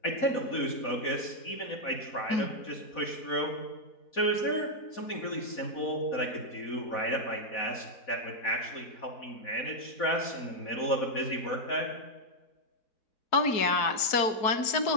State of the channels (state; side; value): late; right; 4.1 ms